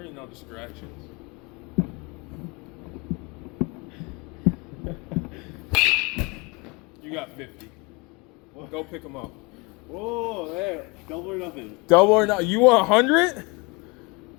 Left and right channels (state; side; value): quieter; right; 27.3 dB